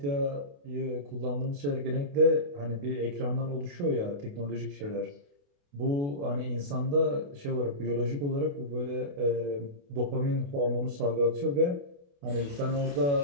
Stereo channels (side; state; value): left; late; 28 ms